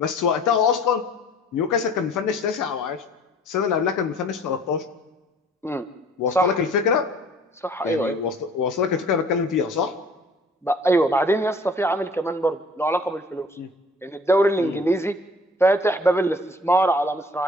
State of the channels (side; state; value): both; normal; correlation 0.51